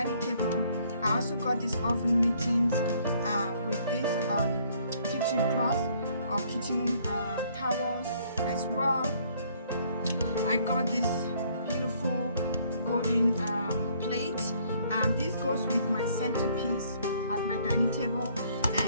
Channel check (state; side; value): inverted; both; correlation -0.64